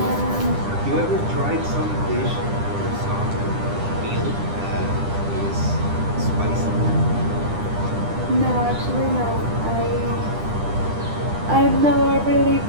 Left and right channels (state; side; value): late; left; 10 ms